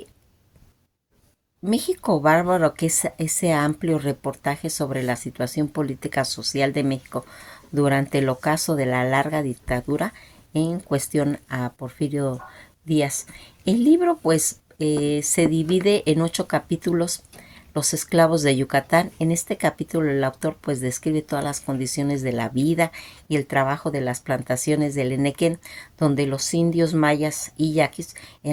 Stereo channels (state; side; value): identical; both; correlation 1.00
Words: México Bárbaro, que es ese amplio reportaje sobre la situación política social de México durante el ocaso de la larga dictadura en cuestión a Porfirio Díaz. El libro pues se divide en 8 capítulos. Los esclavos de Yucatán. En este capítulo el autor pues describe todas las condiciones de la vida y el trabajo de las plantaciones del Enequén, donde los indios mayas y yaquis